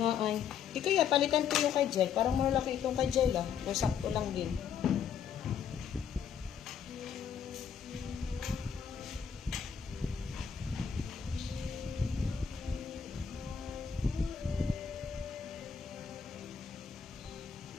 ay. Di kaya, palitan ko yung kay Jail. Parang malaki itong kay Jail, ah. O sakto lang din.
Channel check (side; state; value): right; quieter; 7.6 dB